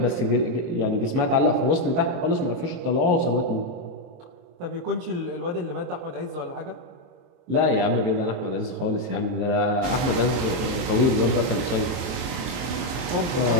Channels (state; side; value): late; left; 23 ms